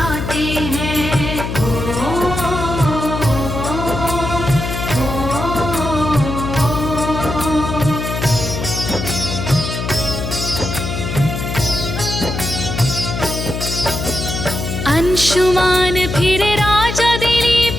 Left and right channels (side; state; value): left; noise; hum, 4 dB below the sound